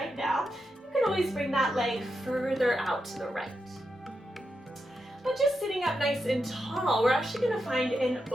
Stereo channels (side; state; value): both; normal; correlation 0.86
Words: now, you can always bring that leg further out to the right. But just sitting up nice and tall, we're actually going to find an